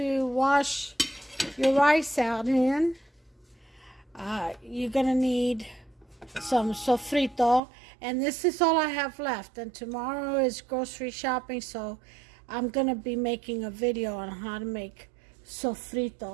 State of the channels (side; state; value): left; drops out; at 7.6 s